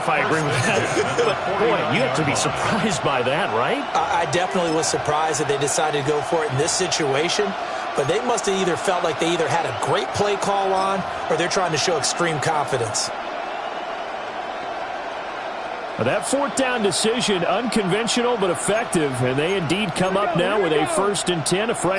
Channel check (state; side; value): identical; both; correlation 1.00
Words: I agree with that. But, boy, you have to be surprised by that, right? I definitely was surprised that they decided to go for it in this situation, but they must have either felt like they either had a great play call on or they're trying to show extreme confidence. That 4th down decision, unconventional but effective, and they indeed come up now with a 1st and 10, a